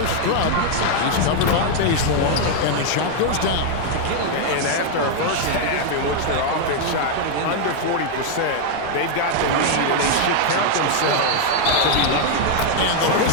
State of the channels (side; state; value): both; different; correlation 0.00